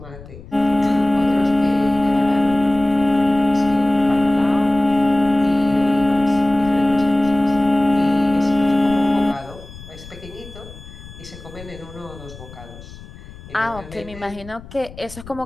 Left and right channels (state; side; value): noise; left; rumble, 17 dB below the sound